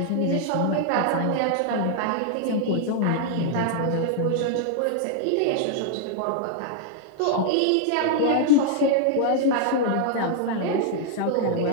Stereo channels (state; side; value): different; both; correlation -0.01